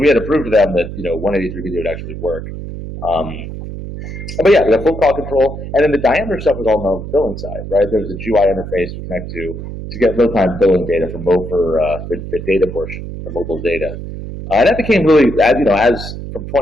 we had to prove to them that 183 video would actually work. But yeah, we have full call control, and then the diameter stuff was all on the billing side, right? There's a GUI interface we connect to get real-time billing data for the data portion, the mobile data, and that became really as from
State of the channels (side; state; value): right; noise; hum, 9 dB below the sound